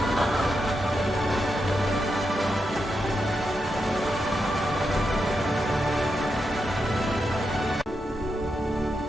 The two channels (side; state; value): both; normal; correlation 0.85